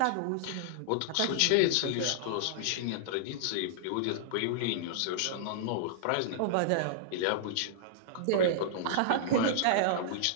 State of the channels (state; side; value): different; both; correlation -0.01